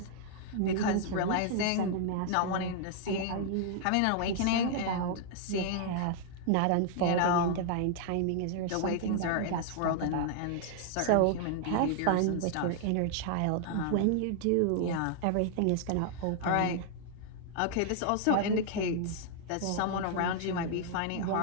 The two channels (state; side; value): different; both; correlation -0.01